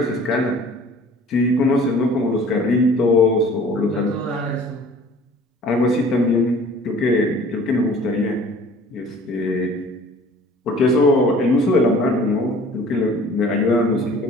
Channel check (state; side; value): normal; both; correlation 0.50